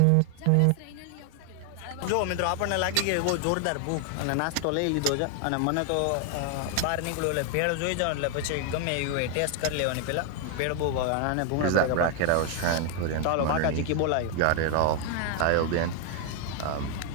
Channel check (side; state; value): both; different; correlation 0.00